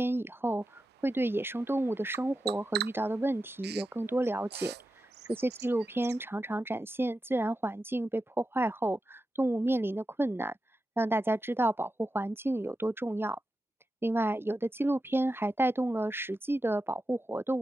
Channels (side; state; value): both; normal; correlation 0.91